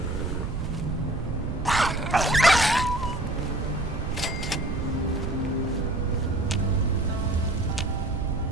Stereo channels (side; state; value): right; noise; rumble, 3 dB below the sound